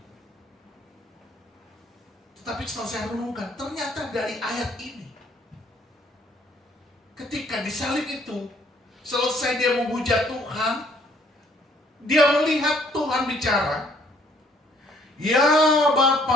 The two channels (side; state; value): both; normal; correlation 0.63